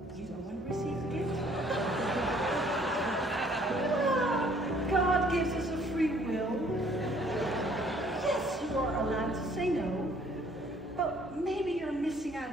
You don't want to receive the gift? God gives us a free will. Yes, you are allowed to say no, but maybe you're missing out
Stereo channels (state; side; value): normal; both; correlation 0.60